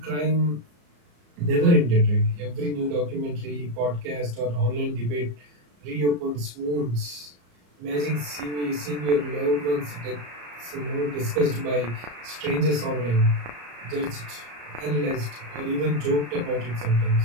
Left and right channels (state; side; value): late; left; 34 ms